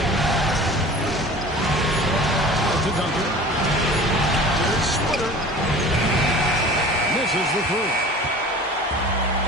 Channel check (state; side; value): normal; both; correlation 0.41